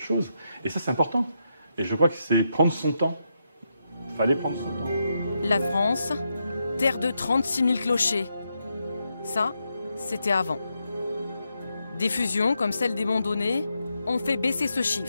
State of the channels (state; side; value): inverted; both; correlation -0.83